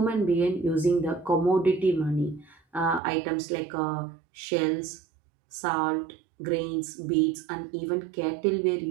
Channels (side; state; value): left; drops out; at 3.0 s